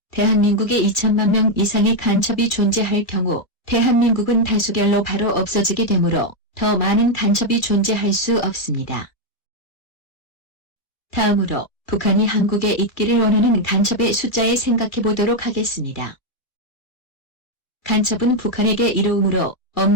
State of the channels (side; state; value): right; late; 2.3 ms